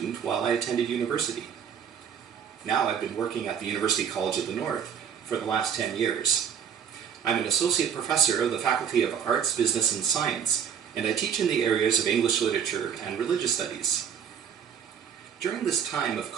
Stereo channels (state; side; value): quieter; left; 7.8 dB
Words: while I attended university. Now I've been working at the University College of the North for the last 10 years. I'm an associate professor of the Faculty of Arts, Business and Science, and I teach in the areas of English literature and religious studies. During this time of